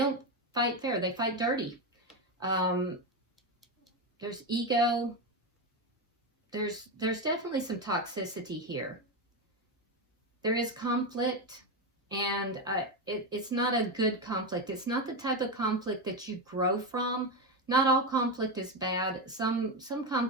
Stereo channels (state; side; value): normal; both; correlation 0.12